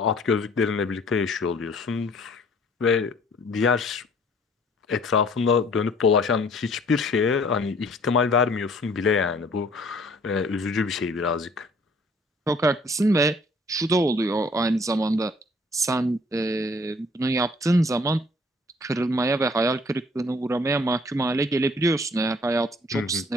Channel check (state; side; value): normal; both; correlation 0.57